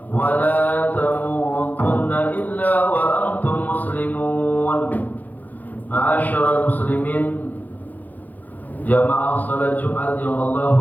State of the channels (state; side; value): late; right; 0.082 ms